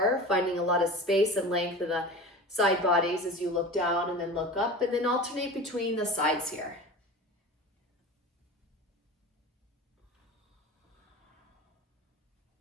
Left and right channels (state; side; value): normal; both; correlation 0.34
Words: finding a lot of space and length in the side bodies as you look down and then look up, and then alternate between the sides here.